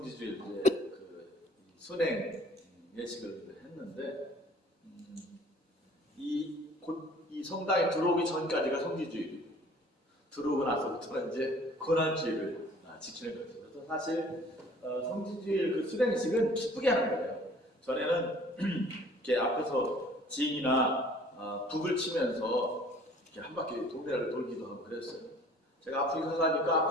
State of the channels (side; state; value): left; late; 4.0 ms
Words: 그 순행 예식을 했는데 이 성당에 들어오기 전까지가 성지주일이고 들어오고 나서부터는 이제 고난주일을 지키는 거죠. 그래서 사실 성지주일 그 수행식은 기쁘게 하는 거예요. 전에는 이렇게 앞에서 지인이나 북을 치면서 이렇게 한 바퀴 동네를 돌기도 하고 그랬어요. 제가 아프리카 가니까